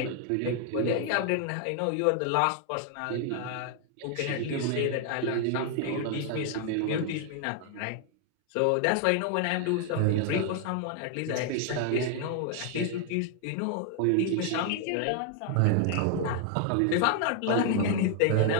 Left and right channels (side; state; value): both; different; correlation 0.00